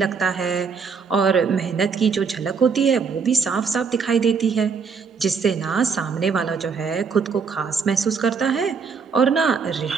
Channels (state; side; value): quieter; left; 5.6 dB